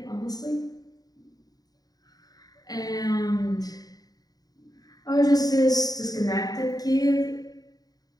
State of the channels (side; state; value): right; late; 0.18 ms